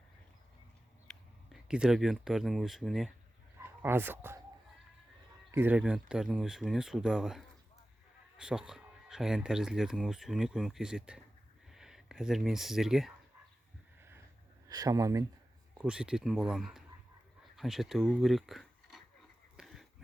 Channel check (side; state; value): both; normal; correlation 0.95